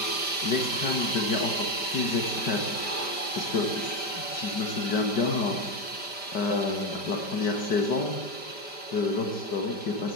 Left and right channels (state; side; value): late; right; 5.1 ms